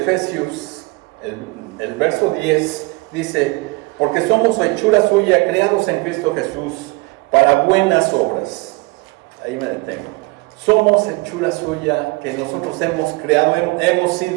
el verso 10, dice: porque somos hechura suya, creados en Cristo Jesús, para buenas obras. Ahí me detengo. Somos hechura suya, que nosotros hemos creado, hemos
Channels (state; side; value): quieter; left; 25.4 dB